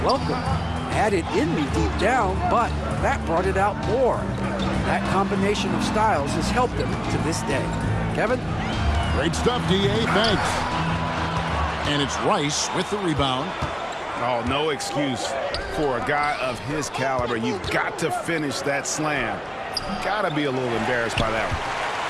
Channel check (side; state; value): both; identical; correlation 1.00